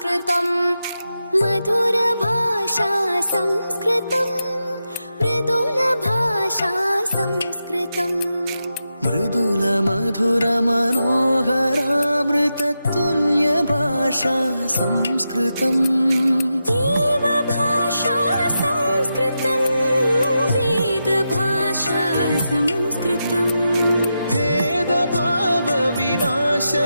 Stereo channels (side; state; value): both; inverted; correlation -0.88